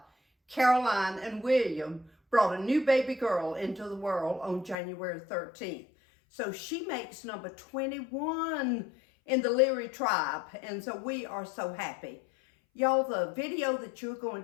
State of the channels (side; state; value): right; drops out; at 4.8 s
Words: Caroline and William brought a new baby girl into the world on January 13th. So she makes number 21 in the Leary tribe, and so we are so happy. Y'all, the video that you're going